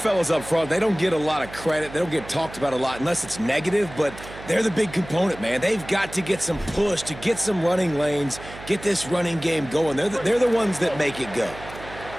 up front, they don't get a lot of credit. They don't get talked about a lot unless it's negative, but they're the big component, man. They've got to get some push, to get some running lanes, get this running game going. They're the ones that make it go.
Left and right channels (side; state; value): right; noise; hum, 15 dB below the sound